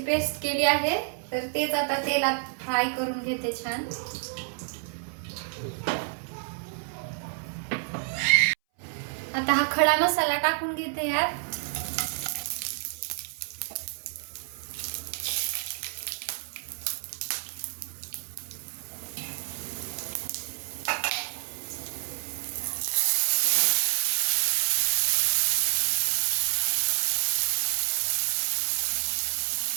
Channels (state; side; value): silent; left; 59 dB below the other